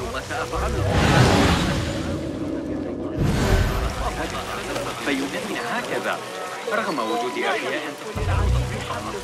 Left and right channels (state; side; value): identical; both; correlation 1.00